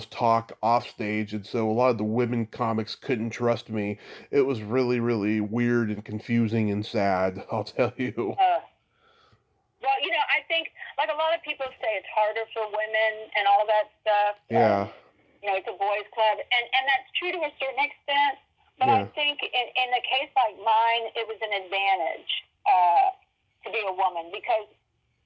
talk off stage, and so a lot of the women comics couldn't trust me. It was really, really weird and confusing and sad, I'll tell you. Well, I think, like a lot of people say, it's harder for women and all that stuff. Yeah. It's a boys' club, and that's true to a certain extent. But Yeah. I think in a case like mine, it was an advantage to be a woman because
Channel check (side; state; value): both; identical; correlation 1.00